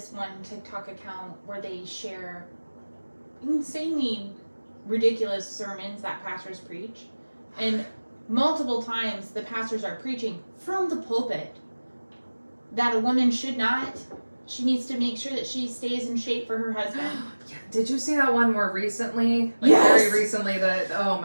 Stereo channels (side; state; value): both; inverted; correlation -1.00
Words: one TikTok account where they share insanely ridiculous sermons that pastors preach. And multiple times the pastors are preaching from the pulpit that a woman should not She needs to make sure that she stays in shape for her husband. Yeah. Did you see that one more recently? Like Yes. Very recently. That oh